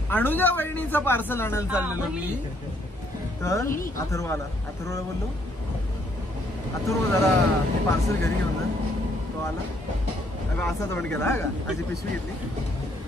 अनुजा वहिनीचं पार्सल आणायला चाललेलो मी तर अथर्वला बोललो अथर्व जरा ते पार्सल घरी घेऊन जा तो आला अगं असा तोंड केला हा का अशी पिशवी घेतली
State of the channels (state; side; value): normal; both; correlation 0.69